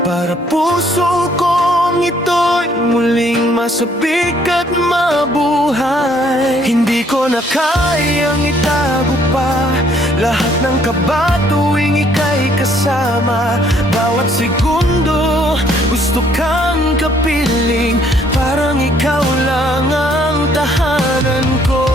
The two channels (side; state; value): both; normal; correlation 0.64